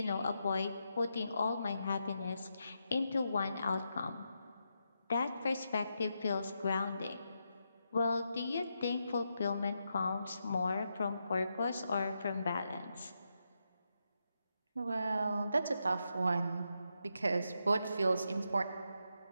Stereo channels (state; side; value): inverted; both; correlation -0.84